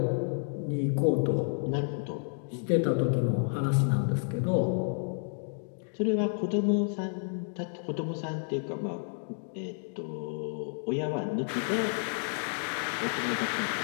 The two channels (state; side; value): silent; right; digital silence